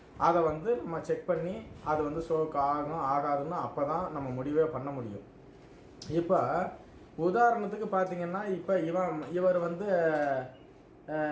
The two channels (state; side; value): identical; both; correlation 1.00